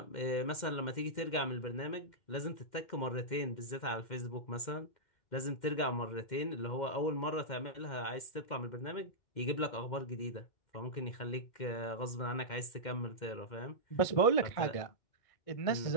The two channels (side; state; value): right; late; 2.1 ms